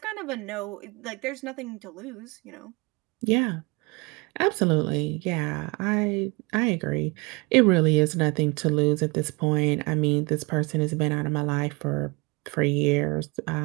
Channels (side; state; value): left; quieter; 27.0 dB